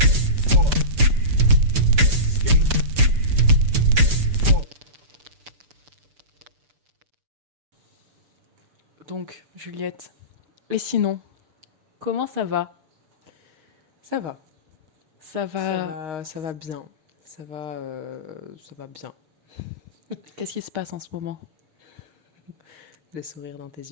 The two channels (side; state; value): left; late; 6.9 ms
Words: Four. Skate. Four. Donc, Juliette, et sinon, comment ça va? Ça va, Ça va. ça va bien. Ça va bien. Qu'est-ce qui se passe en ce moment? Le sourire dans tes